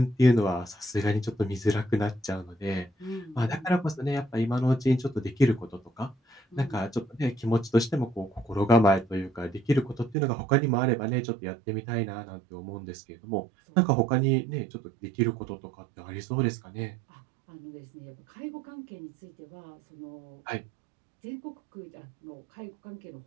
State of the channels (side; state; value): left; drops out; at 10.2 s